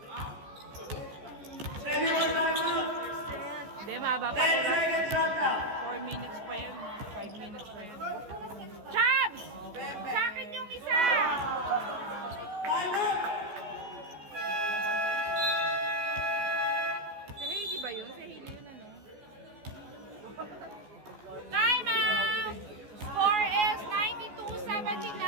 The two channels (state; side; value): late; left; 14 ms